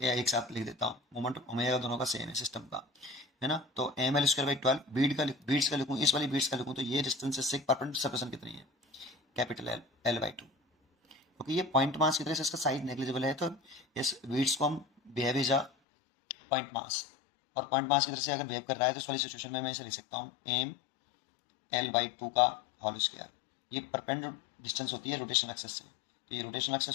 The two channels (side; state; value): right; drops out; at 15.7 s